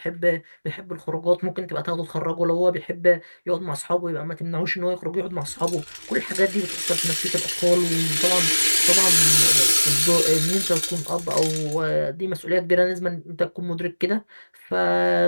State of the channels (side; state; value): both; inverted; correlation -1.00